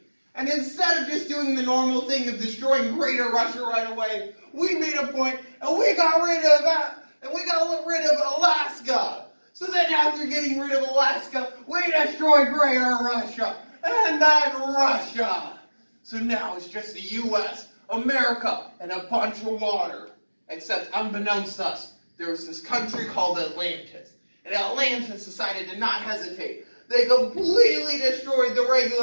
And instead of just doing the normal thing of destroying Greater Russia right away, we made a point and we got rid of that, and we got rid of Alaska. So then after getting rid of Alaska, we destroyed Greater Russia and then Russia. So now it's just the U.S., America, and a bunch of water. Except, unbeknownst to us, there was this country called Atlantis. And Atlantis decided to not hesitate. They completely destroyed the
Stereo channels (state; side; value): inverted; both; correlation -1.00